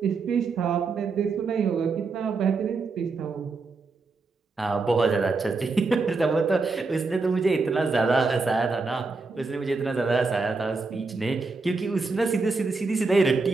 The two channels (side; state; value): left; quieter; 4.1 dB